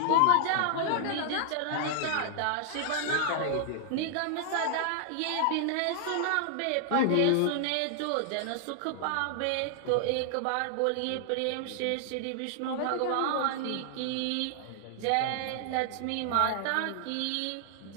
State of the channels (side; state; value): both; different; correlation 0.00